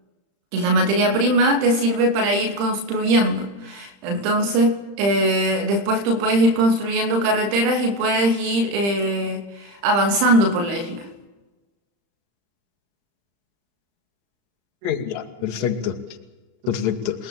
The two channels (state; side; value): late; left; 35 ms